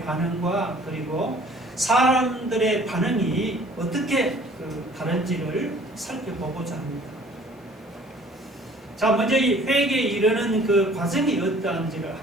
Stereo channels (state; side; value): normal; both; correlation 0.53